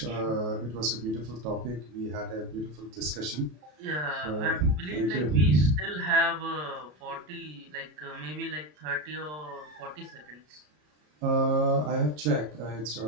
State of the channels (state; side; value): late; left; 33 ms